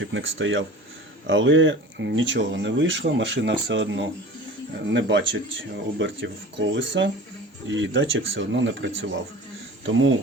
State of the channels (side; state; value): both; normal; correlation 0.39